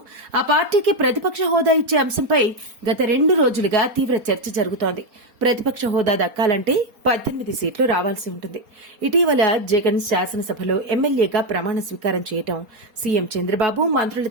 ఆ పార్టీకి ప్రతిపక్ష హోదా ఇచ్చే అంశంపై గత 2 రోజులుగా తీవ్ర చర్చ జరుగుతోంది. ప్రతిపక్ష హోదా దక్కాలంటే 18 సీట్లు రావాల్సి ఉంటుంది. ఇటీవల జగన్ శాసనసభలో ఎమ్మెల్యేగా ప్రమాణ స్వీకారం చేయటం, సీఎం చంద్రబాబు మంత్రుల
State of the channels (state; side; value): late; left; 4.3 ms